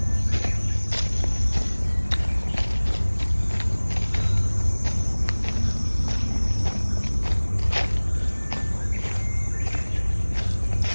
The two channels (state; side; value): inverted; both; correlation -1.00